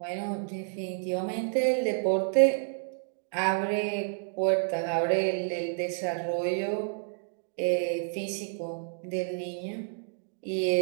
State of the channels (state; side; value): silent; left; digital silence